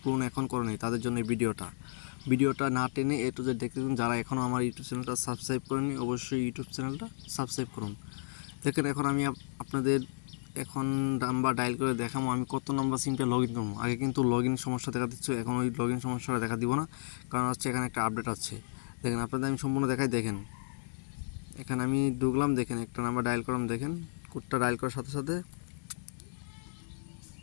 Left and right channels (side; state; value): right; silent; 56 dB below the other